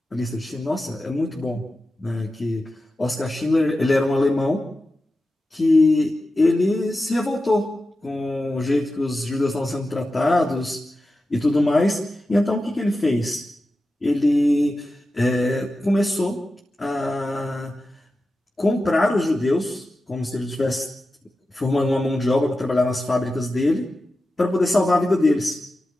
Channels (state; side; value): normal; both; correlation 0.92